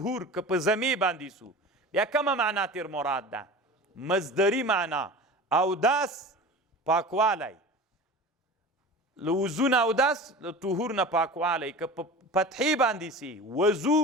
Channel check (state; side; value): normal; both; correlation 0.35